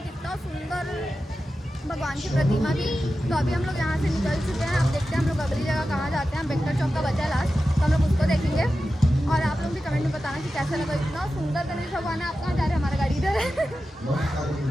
इतना सुंदर भगवान की प्रतिमा थी। तो अभी हम लोग यहाँ से निकल चुके हैं। अब देखते हैं हम लोग अगली जगह कहाँ जाते हैं। बेक्टर चौक का बचा है लास्ट, तो हम लोग उसको देखेंगे। और आप लोग भी कमेंट में बताना कि कैसा लगा, इतना सुंदर गणेश भगवान है। आप कहाँ जा रहे हैं? हमारा गाड़ी इधर है।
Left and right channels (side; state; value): both; normal; correlation 0.92